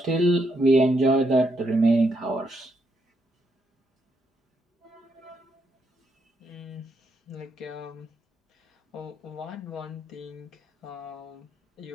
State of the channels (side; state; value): both; normal; correlation 0.78